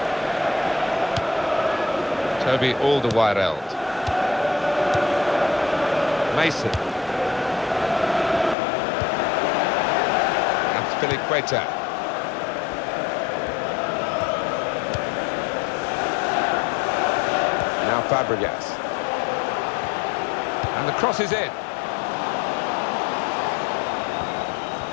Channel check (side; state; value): right; drops out; at 8.6 s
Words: Alderweireld. Mason. Azpilicueta. Now Fabregas. And the cross is in.